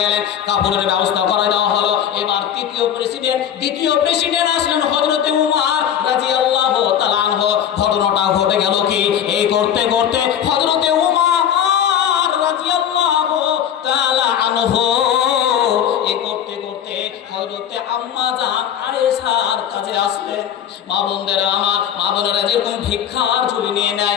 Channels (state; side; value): quieter; right; 9.5 dB